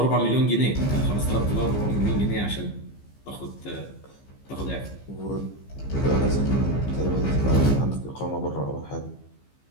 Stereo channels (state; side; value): late; right; 15 ms